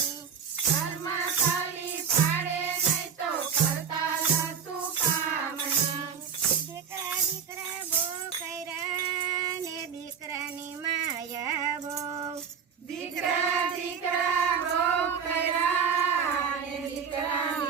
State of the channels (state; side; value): quieter; left; 6.9 dB